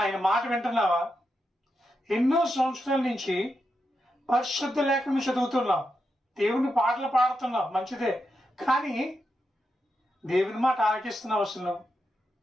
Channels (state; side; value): normal; both; correlation 0.86